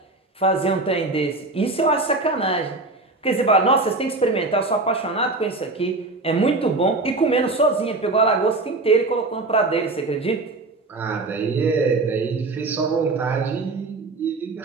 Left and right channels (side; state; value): left; quieter; 3.3 dB